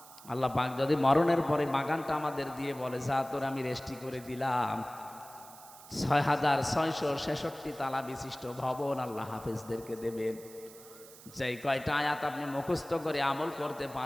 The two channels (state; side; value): noise; right; hiss, 19 dB below the sound